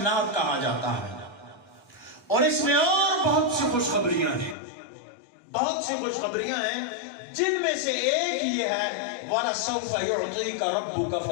کہا جاتا ہے، اور اس میں اور بہت سی خوشخبریاں ہیں، بہت سی خوشخبریاں ہیں، جن میں سے ایک یہ ہے وَلَسَوْفَ يُعْطِيكَ رَبُّكَ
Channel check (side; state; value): right; drops out; at 4.5 s